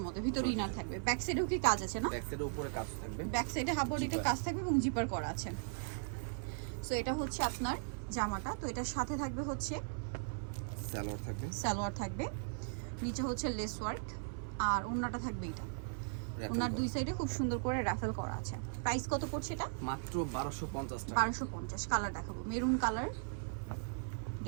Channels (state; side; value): silent; left; 52 dB below the other